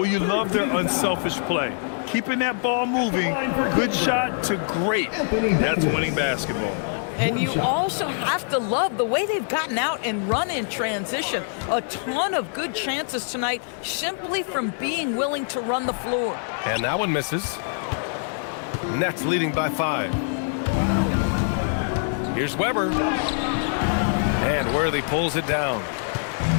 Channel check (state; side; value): silent; right; 61 dB below the other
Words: you love their unselfish play. Keeping that ball moving, good shot to great. That's winning basketball. And you also have to love the way they've gotten out and run in transition. A ton of good chances tonight simply from being willing to run the floor. And that one misses. Nets leading by 5. Here's Weber. And Worthy pulls it down.